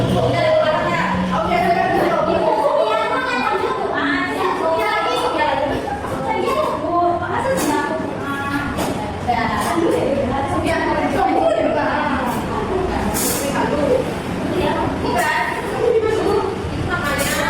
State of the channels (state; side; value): identical; both; correlation 1.00